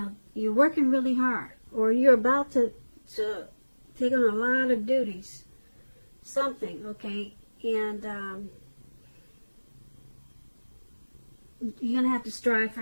you're working really hard, or you're about to take on a lot of duties. Something, okay? And you're going to have to strive for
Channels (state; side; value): inverted; both; correlation -1.00